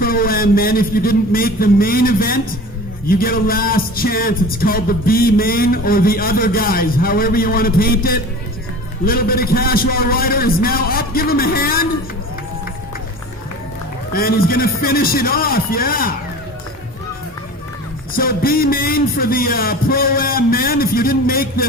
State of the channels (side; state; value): both; normal; correlation 0.37